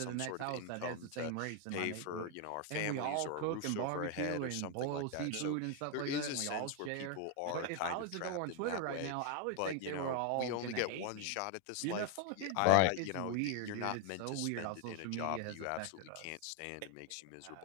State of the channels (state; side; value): different; both; correlation 0.00